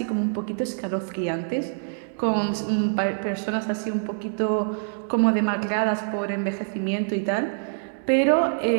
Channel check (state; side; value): silent; left; digital silence